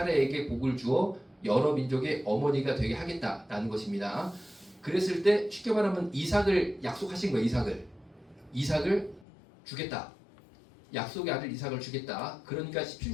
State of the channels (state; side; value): drops out; right; at 9.2 s